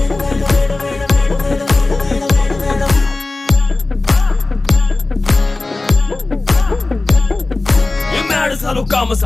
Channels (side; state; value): right; quieter; 3.3 dB